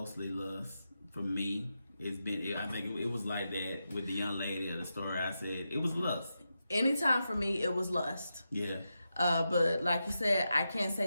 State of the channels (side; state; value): both; inverted; correlation -0.88